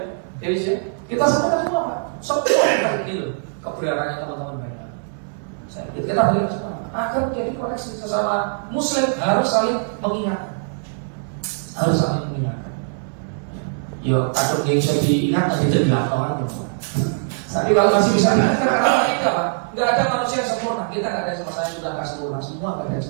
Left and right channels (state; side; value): silent; left; 62 dB below the other